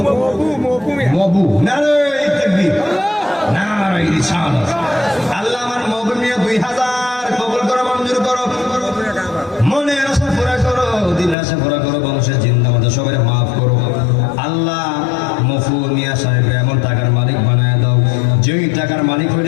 মবু। নারায়ে তাকবীর, নারায়ে রিসালাত। আল্লাহ আমার মবু মিয়া 2,000 কবুল করো, মঞ্জুর করো, মনের আশা পুরা করো, দিনের আশা পুরা করো, বংশের জিন্দা মধ্যে সবাই মাফ করো। আল্লাহ মফু মিয়া সাহেব এমন টাকার মালিক বানায় দাও।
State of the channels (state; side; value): drops out; right; at 11.4 s